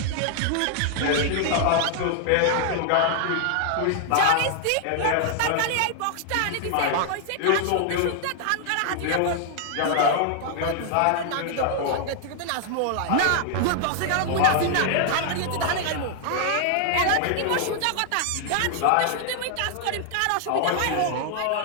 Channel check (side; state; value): both; different; correlation 0.00